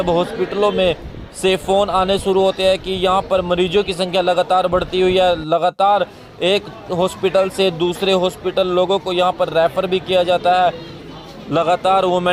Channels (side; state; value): both; identical; correlation 1.00